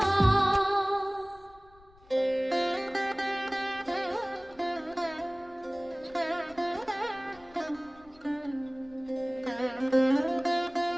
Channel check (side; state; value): left; noise; rumble, 26 dB below the sound